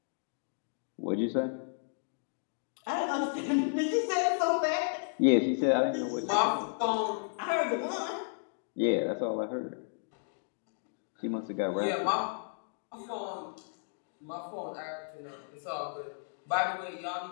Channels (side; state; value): right; silent; digital silence